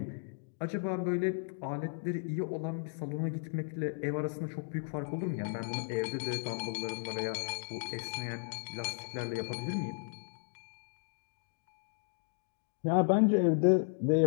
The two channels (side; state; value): right; silent; digital silence